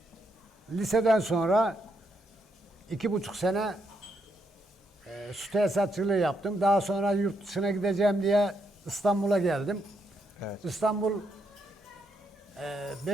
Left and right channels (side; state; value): both; normal; correlation 0.78